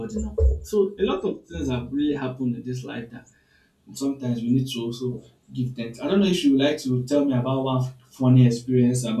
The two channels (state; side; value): identical; both; correlation 1.00